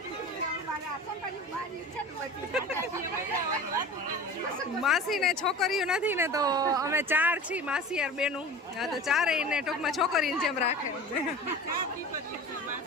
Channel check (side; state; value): both; normal; correlation 0.36